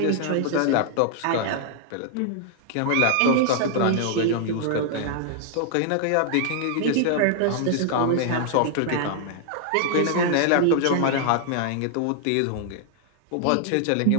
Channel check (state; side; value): different; both; correlation 0.00